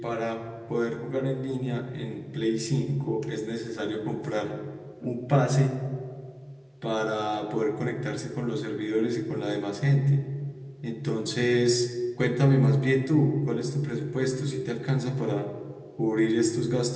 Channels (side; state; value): both; identical; correlation 1.00